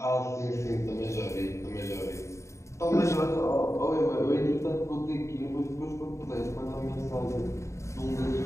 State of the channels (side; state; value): right; late; 0.14 ms